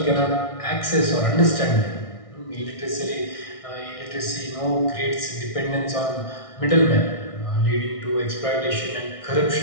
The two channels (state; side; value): late; right; 1.6 ms